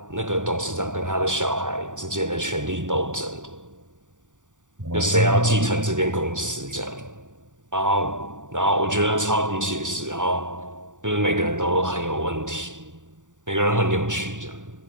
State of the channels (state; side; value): late; left; 0.87 ms